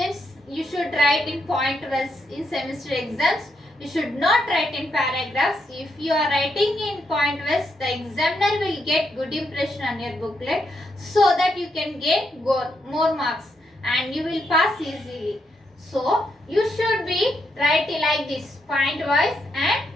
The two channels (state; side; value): normal; both; correlation 0.80